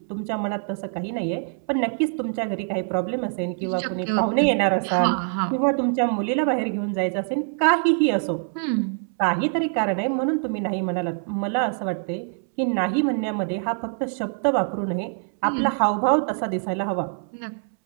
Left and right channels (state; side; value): silent; left; 62 dB below the other